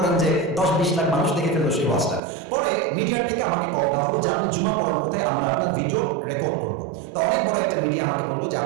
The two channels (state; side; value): drops out; left; at 2.2 s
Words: যে 10-20 লাখ মানুষ দেখে ফেললো সেই ওয়াজটা। পরে মিডিয়ার থেকে আমাকে কল দেওয়া হলো যে আপনি জুমা পড়ার মধ্যে আমরা আপনার ভিডিও রেকর্ড করবো। তো অনেক বড় একটা মিডিয়া আমাকে বললো যে